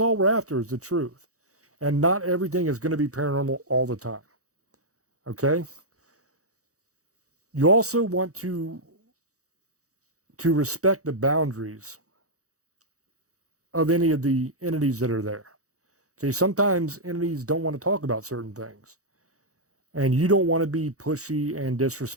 all we're after is the truth. And not everything is going to be paranormal all the time. Okay? You also want to respect the boundaries of any of the entities that are there. Okay, sometimes entities don't want to talk about certain things. And you don't want to be pushy and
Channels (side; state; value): left; late; 0.65 ms